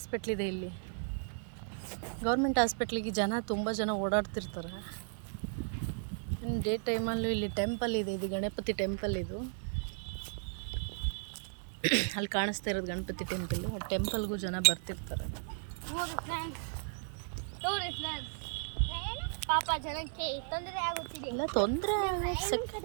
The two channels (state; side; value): silent; left; digital silence